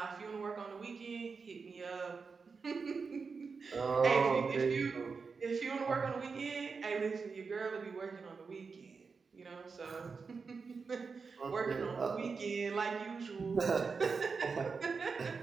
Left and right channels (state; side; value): quieter; left; 5.0 dB